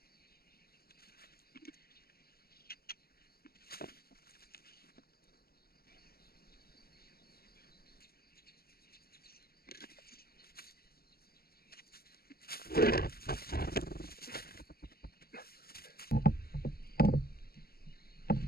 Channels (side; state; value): right; late; 0.44 ms